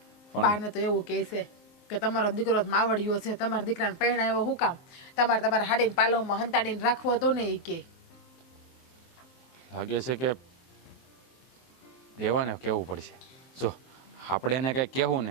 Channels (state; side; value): late; right; 23 ms